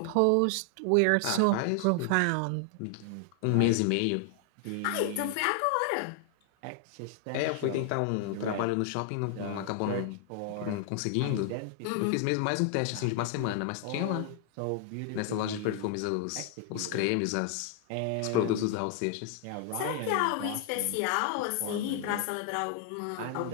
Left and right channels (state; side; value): different; both; correlation 0.00